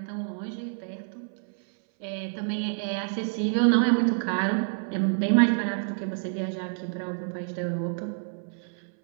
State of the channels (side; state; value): left; silent; 59 dB below the other